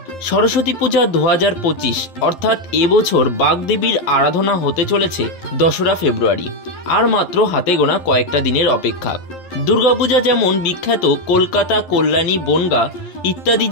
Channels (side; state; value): right; late; 11 ms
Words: সরস্বতী পূজা 2025 অর্থাৎ এবছর বাগদেবীর আরাধনা হতে চলেছে 2রা ফেব্রুয়ারি। আর মাত্র হাতে গোনা কয়েকটা দিনের অপেক্ষা। দুর্গাপূজা যেমন বিখ্যাত কলকাতা, কল্যাণী, বনগাঁ ইত্যাদি